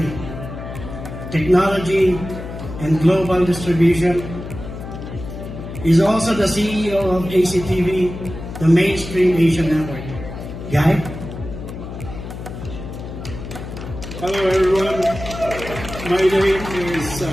Technology and global distribution. He's also the CEO of ACTV, the mainstream Asian network. Guy? Hello everyone. My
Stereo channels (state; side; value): noise; left; hum, 10 dB below the sound